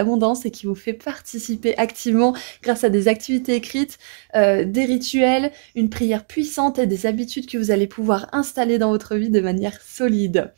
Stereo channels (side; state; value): left; silent; digital silence